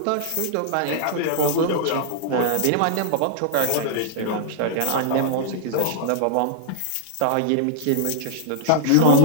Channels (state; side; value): different; both; correlation -0.01